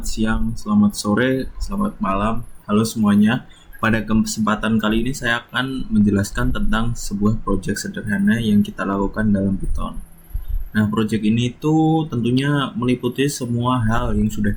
siang, selamat sore, selamat malam. Halo semuanya. Pada kesempatan kali ini saya akan menjelaskan tentang sebuah proyek sederhana yang kita lakukan dalam Python. Nah, proyek ini itu tentunya meliputi semua hal yang sudah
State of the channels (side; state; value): both; identical; correlation 1.00